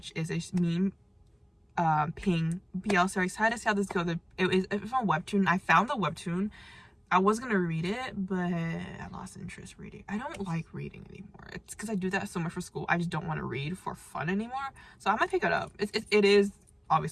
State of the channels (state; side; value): identical; both; correlation 1.00